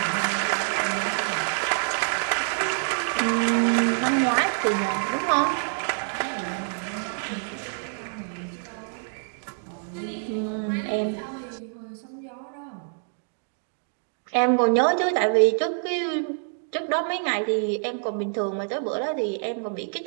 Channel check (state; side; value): silent; left; digital silence